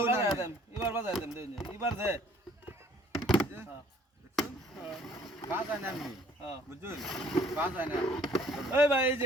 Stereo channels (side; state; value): both; normal; correlation 0.57